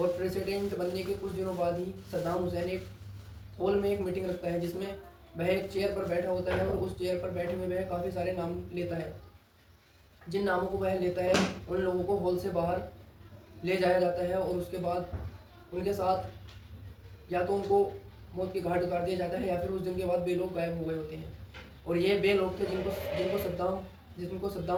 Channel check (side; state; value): both; identical; correlation 1.00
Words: प्रेसिडेंट बनने के कुछ दिनों बाद ही सद्दाम हुसैन एक हॉल में एक मीटिंग रखता है जिसमें वह एक चेयर पर बैठा होता है और उस चेयर पर बैठे हुए वह काफ़ी सारे नाम लेता है। जिन नामों को वह लेता है उन लोगों को हॉल से बाहर ले जाया जाता है और उसके बाद उनके साथ या तो उनको मौत की घाट उतार दिया जाता है या फिर उस दिन के बाद 2 लोग गायब हो गए होते हैं। और ये 2 लोग थे जिनको